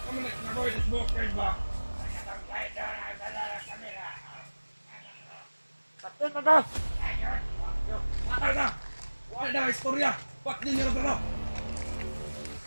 nak nagawa sa smoker ba? Kapten na ka! Patay na! Wala na istorya! Ba't di nyo na ito?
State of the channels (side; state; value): both; inverted; correlation -1.00